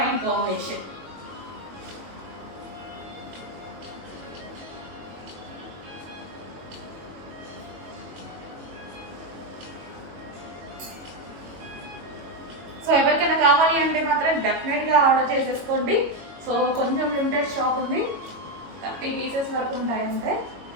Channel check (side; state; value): left; late; 22 ms